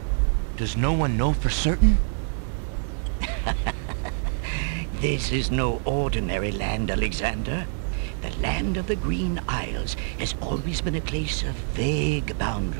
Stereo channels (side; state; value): left; silent; 61 dB below the other